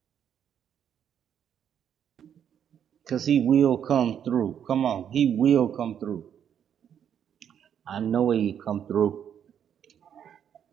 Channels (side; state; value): left; quieter; 8.9 dB